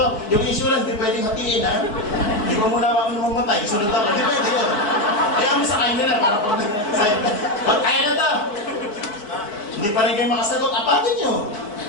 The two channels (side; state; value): right; late; 4.6 ms